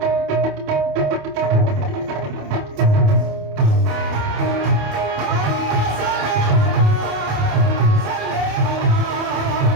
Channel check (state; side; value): late; left; 28 ms